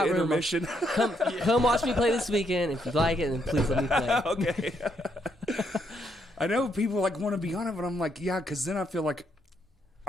the room, intermission. come watch me play this weekend. If you like it, then please let me play. Okay. I know people like want to be on it, but I'm like, yeah, because then I feel like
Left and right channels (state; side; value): normal; both; correlation 0.75